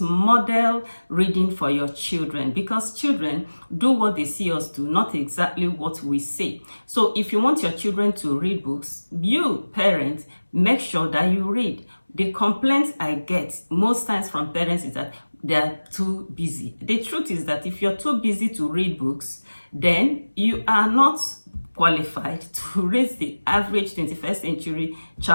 reading for your children, because children do what they see us do, not exactly what we say. So if you want your children to read books, you parents make sure that you read. The complaints I get most times from parents is that they are too busy. The truth is that if you're too busy to read books, then you are not qualified to raise the average 21st century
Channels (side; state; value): both; inverted; correlation -1.00